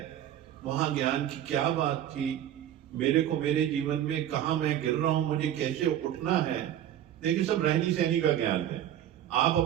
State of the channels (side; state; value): left; quieter; 11.3 dB